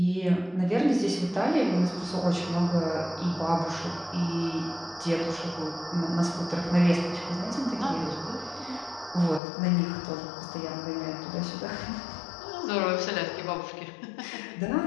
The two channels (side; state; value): right; drops out; at 9.4 s